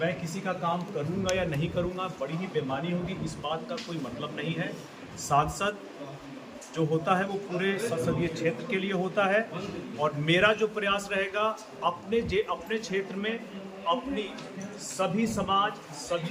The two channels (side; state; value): both; identical; correlation 1.00